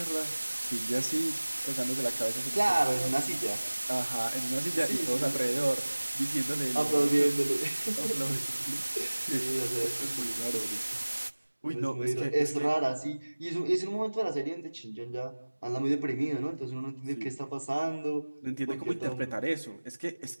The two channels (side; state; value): both; inverted; correlation -1.00